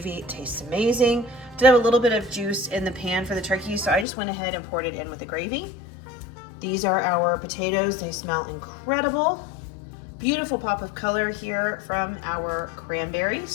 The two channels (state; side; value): drops out; right; at 4.0 s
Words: it tastes amazing. Did have a little bit of juice in the pan for the turkey, so I just went ahead and poured it in with the gravy. These are our potatoes. They smell incredible. Beautiful pop of color here from our